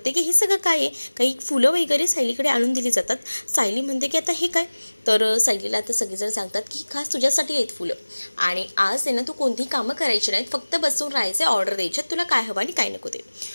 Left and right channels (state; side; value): inverted; both; correlation -1.00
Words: की हे सगळं काय आहे, काही फुलं वगैरे सायलीकडे आणून दिली जातात. सायली म्हणते की आता हे काय, तर सायलीला आता सगळेजण सांगतात की खास तुझ्यासाठी आहेत फुलं, आणि आज आहे ना तू कोणतीही कामं करायची नाहीत, फक्त बसून राहायचं, ऑर्डर द्यायच्यात तुला काय हवं आणि काय नको ते.